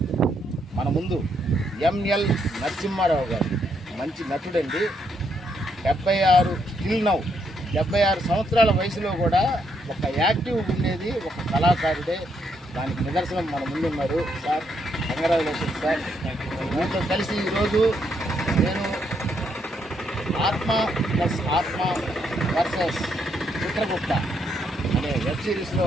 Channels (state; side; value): normal; both; correlation 0.75